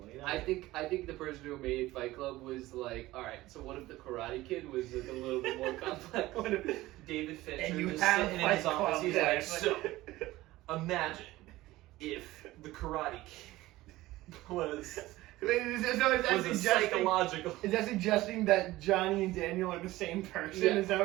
You know? I think the person who made Fight Club was like, all right. So what if the Karate Kid was like a little bit more complex? What if David Fincher and you just have sitting in his Fight office, Club, he's yeah, like, it's so imagine if the Karate Kid was is that a psychological. Is that suggesting that Johnny and Daniel are the same person? Yeah. Is that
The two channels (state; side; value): quieter; left; 17.6 dB